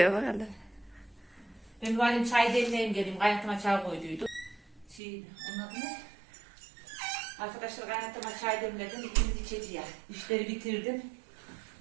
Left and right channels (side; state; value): left; drops out; at 5.0 s